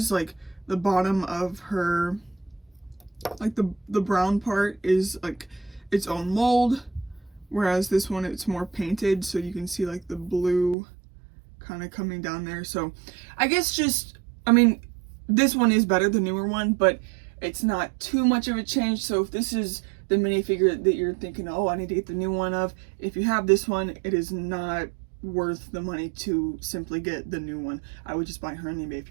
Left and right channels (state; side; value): drops out; left; at 10.8 s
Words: like the bottom of her, like the brown part is like its own mold, whereas this one it's more painted, so you can see like the blue kind of coming down there. So I guess just, I mean, this one is better, the newer one, but it's not too much of a change. So if this is the minifigure that you're thinking, oh, I need to get the new one of, if you have this one, it is not worth the money to simply get the new one. I would just buy her anyway if